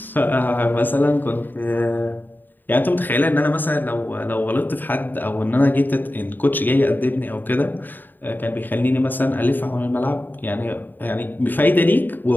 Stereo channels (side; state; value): right; late; 0.090 ms